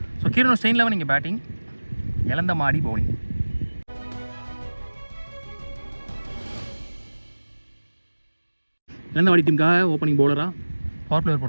ஸோ கீரனூர் ஸ்டைன் லெவன் இங்கே பேட்டிங், இழந்த மாடி பவுலிங். இழந்த மாடி டீமுக்காக ஓப்பனிங் பவுலராக பவர் பிளேயர்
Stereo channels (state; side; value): inverted; both; correlation -1.00